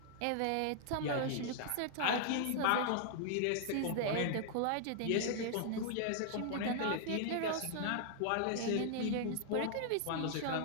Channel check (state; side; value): different; both; correlation -0.01